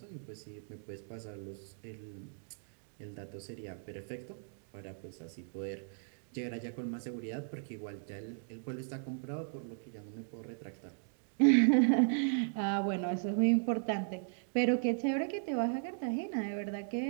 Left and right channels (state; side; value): silent; left; digital silence